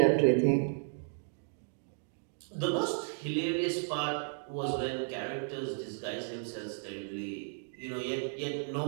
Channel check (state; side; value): silent; left; digital silence